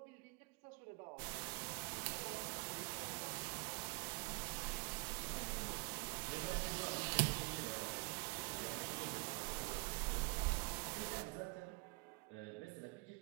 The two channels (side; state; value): left; quieter; 28.6 dB